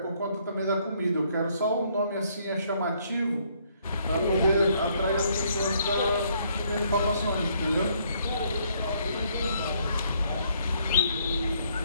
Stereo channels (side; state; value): both; inverted; correlation -0.68